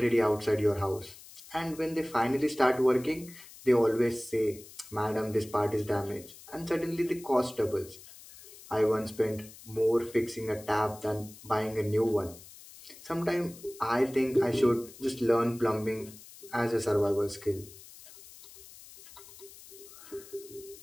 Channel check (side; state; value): left; noise; hiss, 19 dB below the sound